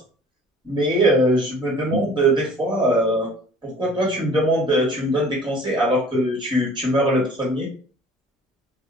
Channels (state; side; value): normal; both; correlation 0.49